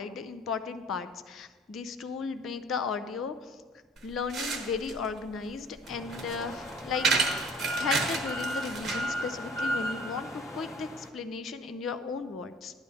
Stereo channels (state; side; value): normal; both; correlation 0.50